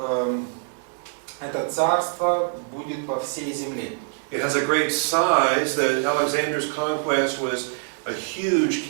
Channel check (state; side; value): silent; left; digital silence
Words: это царство будет по всей земле. It has a great size. Alexander's conquest was a huge